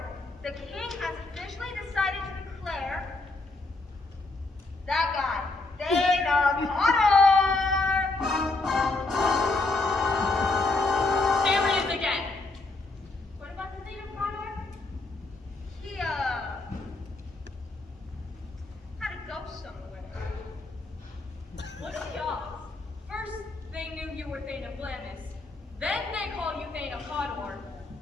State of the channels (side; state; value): right; quieter; 3.3 dB